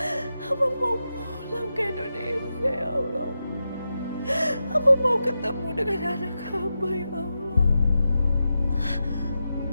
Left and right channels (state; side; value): inverted; both; correlation -0.89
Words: Hamba mau pulang ke Indonesia ya Allah. Hamba mau ketemu dengan anak hamba ya Allah.